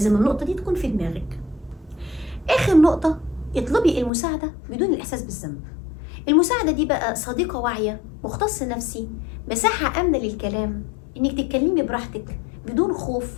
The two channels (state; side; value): drops out; right; at 4.1 s